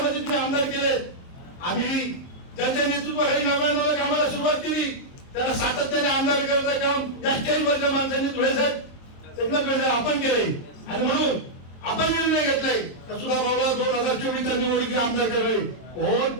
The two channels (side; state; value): right; late; 23 ms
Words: तुम्ही आमदार केलेत. आम्ही ज्यांच्या नेतृत्वाखाली 99 कामाला सुरुवात केली त्यांना सातत्याने आमदार करायचं काम या स्टेजवरच्या माणसांनी धुळे साहेब आपण केलंय. आणि म्हणून आपण निर्णय घेतलाय सुद्धा भाऊला 2024 निवडणुकीत आमदार करावे. कोण